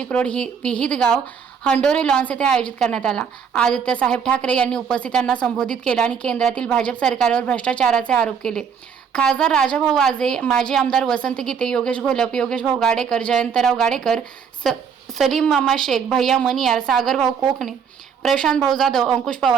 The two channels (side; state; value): left; quieter; 6.9 dB